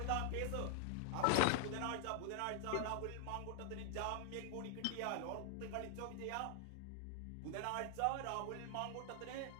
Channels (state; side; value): different; both; correlation 0.00